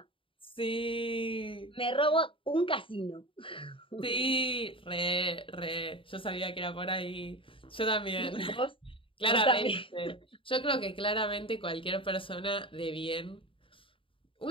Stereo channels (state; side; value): late; right; 0.25 ms